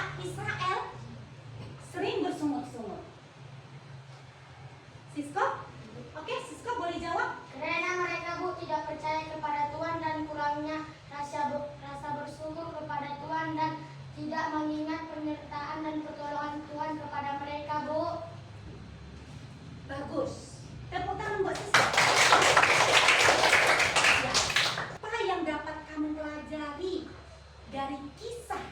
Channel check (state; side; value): identical; both; correlation 1.00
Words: Israel sering bersungut-sungut? Sisko? Oke, Sisko boleh jawab? Karena mereka tidak percaya kepada Tuhan dan kurangnya rasa bersyukur kepada Tuhan dan tidak mengingat penyertaan dan pertolongan Tuhan kepada mereka, Bu. Bagus. Tepuk tangan buat Sisko. Ya. Apa yang dapat kamu pelajari dari kisah